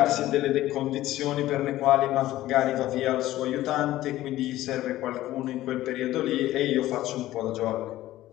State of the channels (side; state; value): right; quieter; 15.2 dB